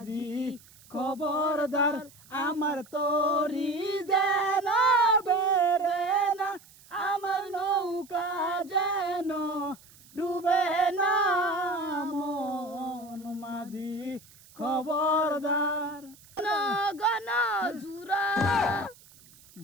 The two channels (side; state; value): right; noise; hiss, 25 dB below the sound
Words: খবরদার আমার তরি যেন বেরে না, আমার নৌকা যেন ডুবে না। মন মাঝি খবরদার। গণ জুরা